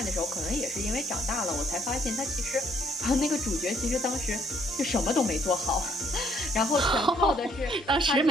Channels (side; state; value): both; normal; correlation 0.67